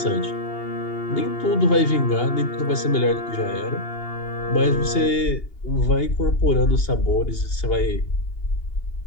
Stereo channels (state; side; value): late; right; 2.8 ms